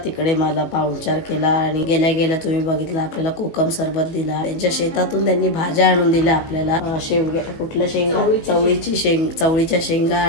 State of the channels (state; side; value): late; right; 18 ms